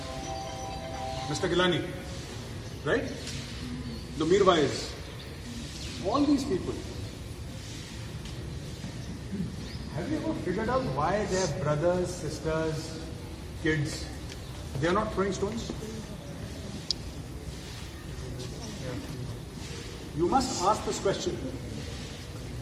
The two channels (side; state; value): both; identical; correlation 1.00